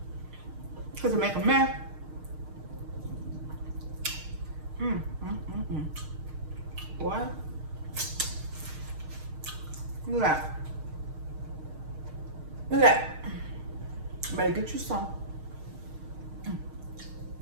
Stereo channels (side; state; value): left; late; 6.5 ms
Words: Because it make a mess. Boy. Look at that. Look at that. Better get you some.